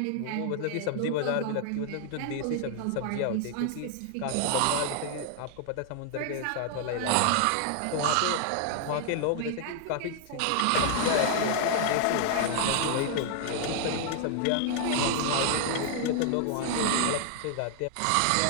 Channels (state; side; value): different; both; correlation 0.00